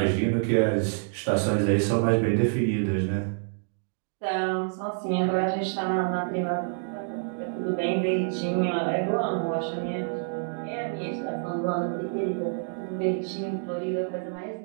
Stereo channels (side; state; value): left; silent; digital silence